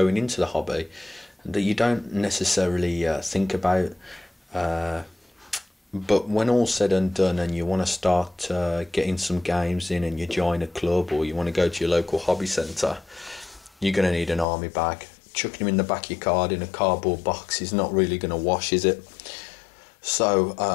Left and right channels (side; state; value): right; drops out; at 14.5 s